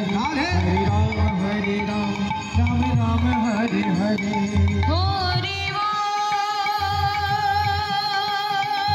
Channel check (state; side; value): identical; both; correlation 1.00